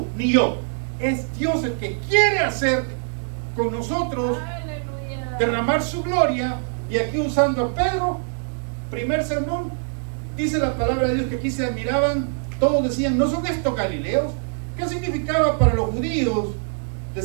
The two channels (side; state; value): left; silent; 63 dB below the other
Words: ni yo. Es Dios el que quiere hacer con nosotros, derramar su gloria. Y aquí usando a Pedro, primer sermón, dice la palabra de Dios que aquí se admiraban, todos decían, ¿no son estos galileos? ¿Qué significaba para los judíos